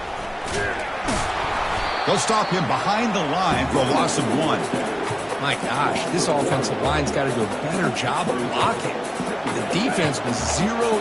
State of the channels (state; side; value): identical; both; correlation 1.00